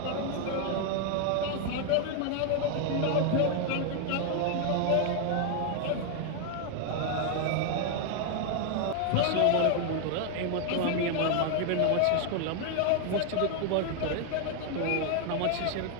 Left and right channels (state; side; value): different; both; correlation 0.00